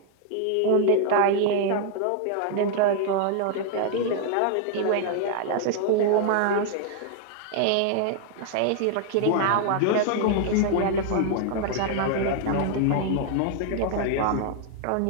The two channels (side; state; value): both; different; correlation 0.00